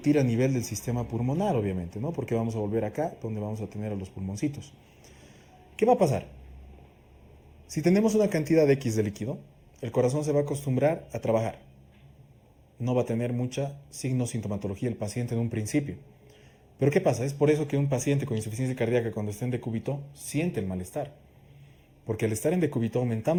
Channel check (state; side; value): identical; both; correlation 1.00